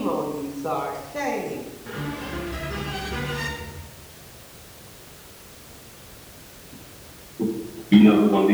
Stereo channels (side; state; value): both; identical; correlation 1.00